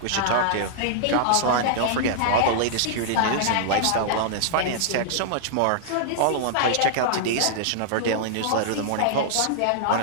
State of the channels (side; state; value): both; different; correlation -0.01